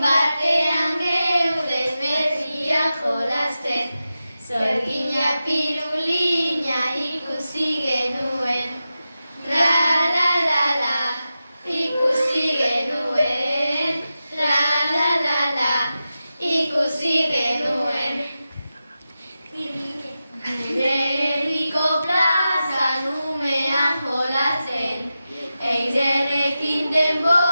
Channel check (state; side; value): inverted; both; correlation -0.92